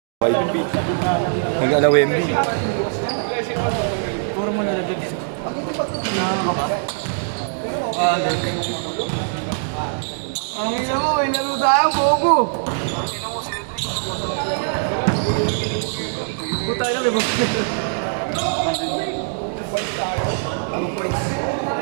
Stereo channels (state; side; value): silent; left; digital silence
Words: Mag-ala Wemby. Puro mo na nagdag. Nakaka ba? Ang ina mo, may laro tayo, bobo! Puta na, may bobo.